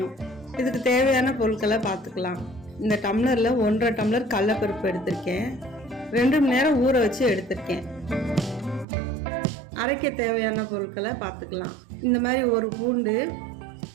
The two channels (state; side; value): drops out; left; at 8.8 s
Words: இதுக்கு தேவையான பொருட்களை பார்த்துக்கலாம். இந்த டம்ளரில் 1.5 டம்ளர் கடலைப்பருப்பு எடுத்திருக்கேன். 2 மணி நேரம் ஊற வச்சு எடுத்திருக்கேன். அரைக்க தேவையான பொருட்களை பார்த்துக்கலாம். இந்த மாதிரி ஒரு பூண்டு,